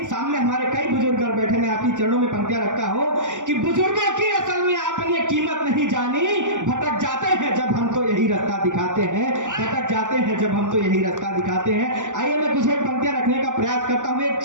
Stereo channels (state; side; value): late; left; 0.86 ms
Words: सामने हमारे कई बुजुर्ग बैठे, मैं आपकी चरणों में पंक्तियां रखता हूं कि बुजुर्गों की असल में आपने कीमत नहीं जानी। भटक जाते हैं जब हम तो यही रास्ता दिखाते हैं, भटक जाते हैं जब हम तो यही रास्ता दिखाते हैं। आइए मैं कुछ एक पंक्तियां रखने का प्रयास करता हूं, एक